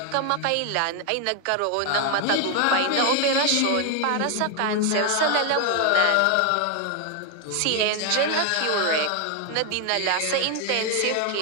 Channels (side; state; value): both; different; correlation 0.01